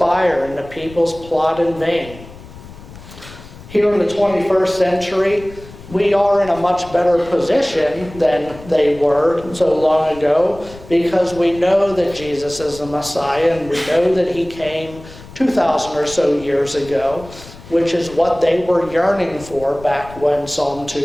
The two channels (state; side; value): noise; left; rumble, 18 dB below the sound